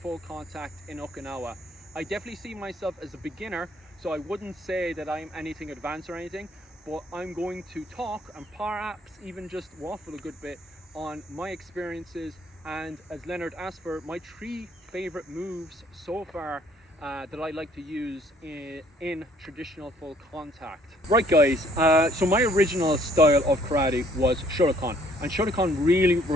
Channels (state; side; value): normal; both; correlation 0.61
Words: contact in Okinawa. I definitely see myself as a beginner, so I wouldn't say that I'm anything advanced or anything, but I'm going to talk and perhaps even just waffle a good bit on my experiences and, as Leonard asked for, my 3 favorite moves so far that I like to use in traditional full contact. Right guys, so my original style of karate was Shotokan, and Shotokan really